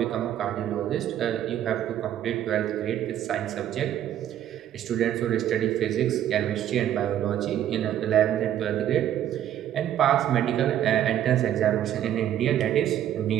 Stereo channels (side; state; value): left; quieter; 11.1 dB